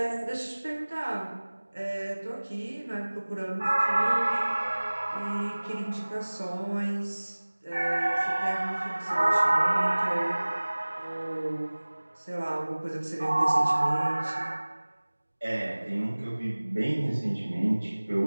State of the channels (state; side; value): inverted; both; correlation -1.00